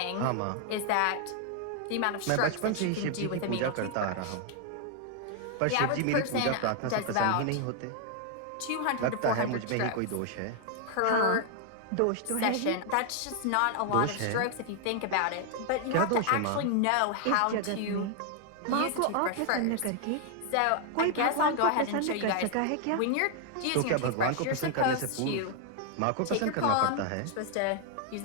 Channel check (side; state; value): both; different; correlation 0.00